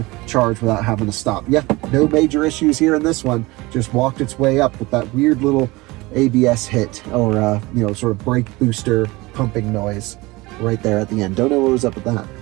charge without having to stop. Yeah, no major issues here in this one. Just walked its way up with that weird little ABS hit, or you know, sort of brake booster pumping noise right there at the end. Don't know what was up with that.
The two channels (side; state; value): left; quieter; 22.0 dB